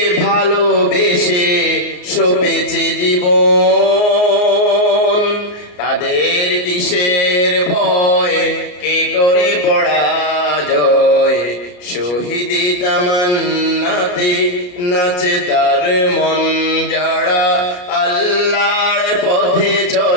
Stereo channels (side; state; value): right; late; 34 ms